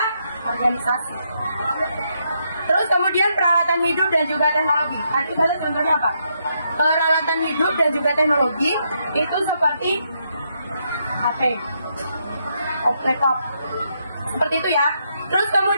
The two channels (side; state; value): both; inverted; correlation -0.78